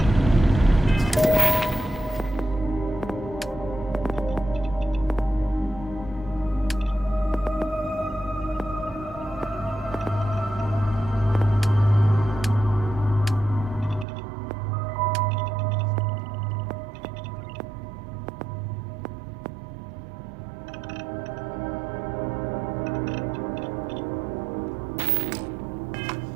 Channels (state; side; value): drops out; left; at 14.1 s